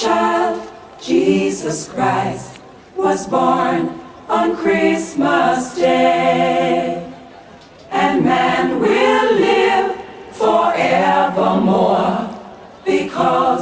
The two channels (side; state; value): both; identical; correlation 1.00